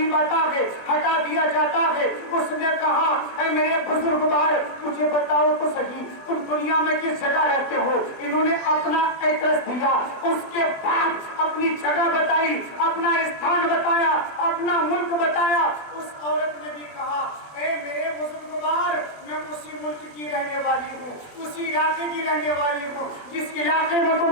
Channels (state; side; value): late; right; 20 ms